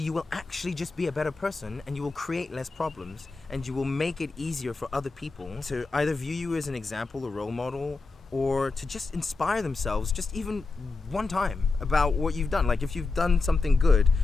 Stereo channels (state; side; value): quieter; right; 3.9 dB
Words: you will actually just be a better person, and you will create less problems, and you will make it easier for other people to either view you as an example, a role model, or to just inspire themselves just even one time about what you've done. Like if you've done something good,